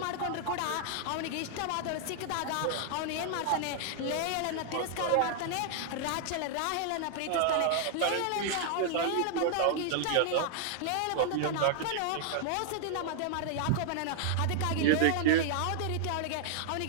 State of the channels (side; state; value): both; different; correlation -0.01